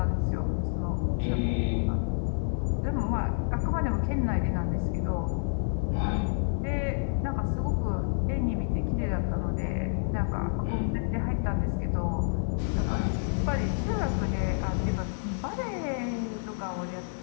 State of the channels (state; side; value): silent; right; 59 dB below the other